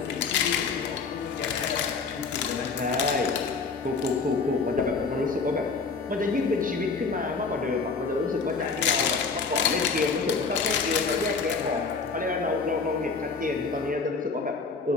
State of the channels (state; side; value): quieter; right; 4.7 dB